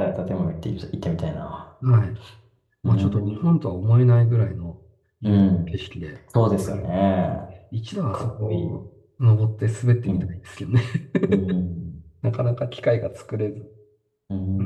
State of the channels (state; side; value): identical; both; correlation 1.00